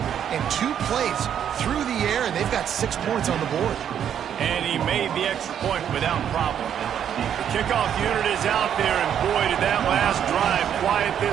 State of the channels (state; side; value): quieter; left; 9.1 dB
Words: and 2 plays through the air, and they've got 6 points on the board. And he made the extra point without problem. The kickoff unit is out there, and boy, did that last drive quiet